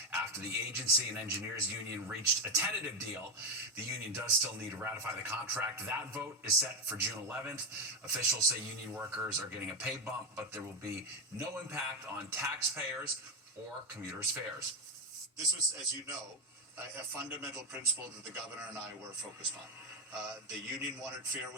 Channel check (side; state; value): both; normal; correlation 0.10